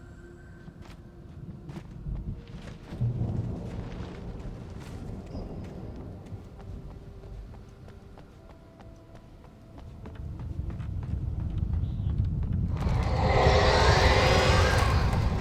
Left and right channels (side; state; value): both; identical; correlation 1.00